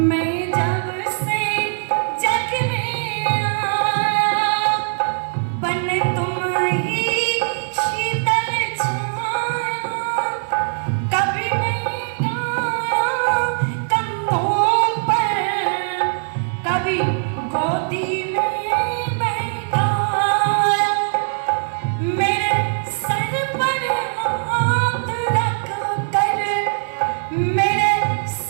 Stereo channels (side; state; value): left; silent; digital silence